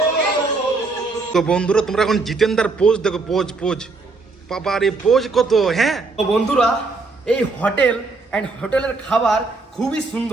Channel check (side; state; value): left; quieter; 3.8 dB